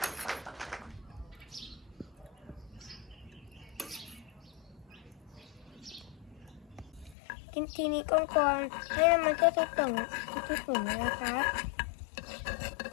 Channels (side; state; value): right; drops out; at 7.2 s